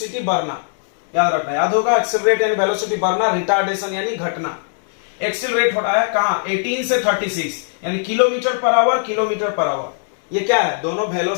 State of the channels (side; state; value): right; silent; digital silence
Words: बढ़ना, याद रखना, याद होगा। एक्सेलरेट यानी वेलोसिटी बढ़ना, रिटार्डेशन यानी घटना। एक्सेलरेट हो रहा है कहां 18 से 36, यानी kilometre per hour, kilometre per hour. ये क्या है, दोनों